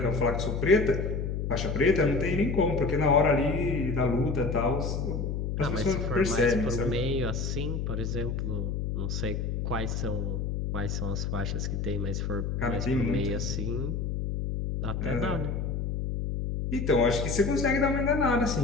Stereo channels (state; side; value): noise; left; hum, 2 dB below the sound